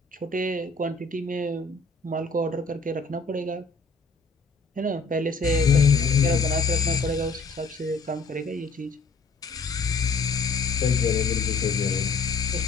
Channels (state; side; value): quieter; right; 4.1 dB